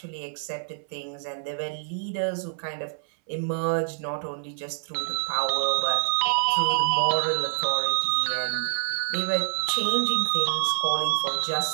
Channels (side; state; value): left; silent; 61 dB below the other